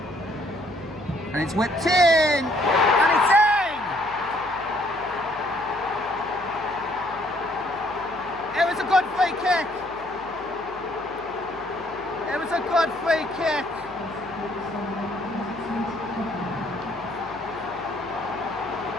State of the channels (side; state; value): left; noise; hum, 22 dB below the sound